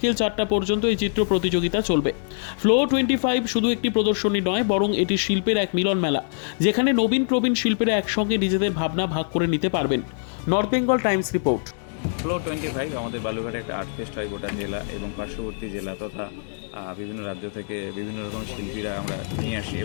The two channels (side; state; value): right; silent; digital silence